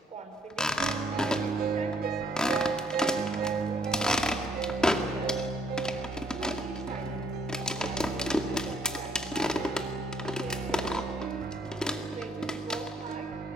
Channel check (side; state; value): both; normal; correlation 0.66